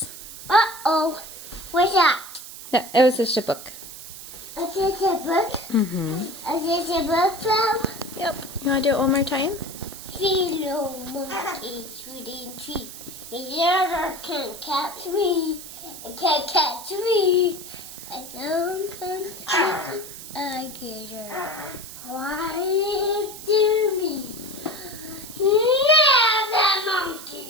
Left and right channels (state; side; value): noise; right; hiss, 13 dB below the sound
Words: Uh-oh. What's that? No, it was just a book. Is this a book? Mm-hmm. Is this a book, Flo? Yep. You want to do it one more time? Philo monkey, sweetie tea. His daughter can't catch me. It can't catch me. I don't catch alligator. Quiet to me. Now the monkey.